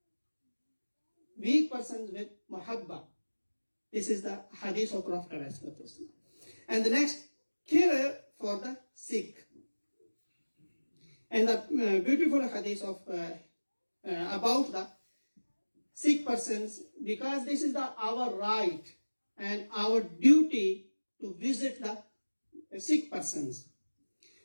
Weak persons with mahabba. This is the hadith of Prophet ﷺ. And the next, care for the sick. And the beautiful hadith of about the sick persons, because this is our right and our duty to visit the sick persons.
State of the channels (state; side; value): inverted; both; correlation -1.00